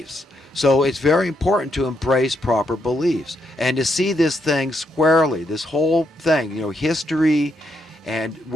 So it's very important to embrace proper beliefs and to see this thing squarely, this whole thing, you know, history and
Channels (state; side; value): normal; both; correlation 0.78